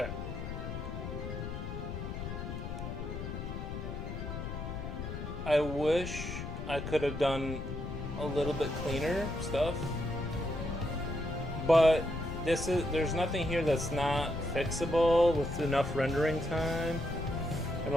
I wish I could have done a little bit cleaner stuff, but there's nothing here that's not fixable with enough rendering time and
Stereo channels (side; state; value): left; noise; rumble, 6 dB below the sound